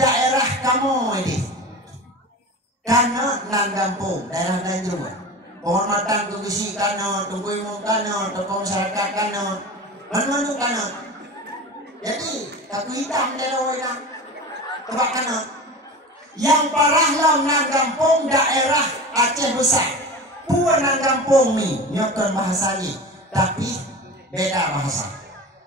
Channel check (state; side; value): normal; both; correlation 0.31